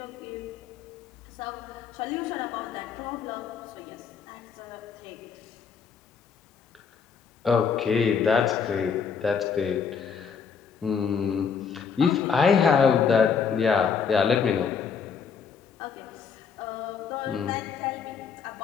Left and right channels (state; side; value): quieter; right; 6.4 dB